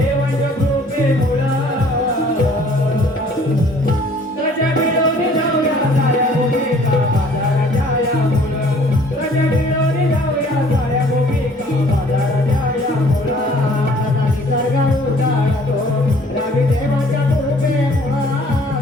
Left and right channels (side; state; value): both; normal; correlation 0.56